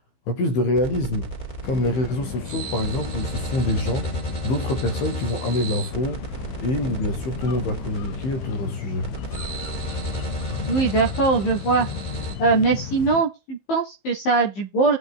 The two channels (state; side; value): late; right; 15 ms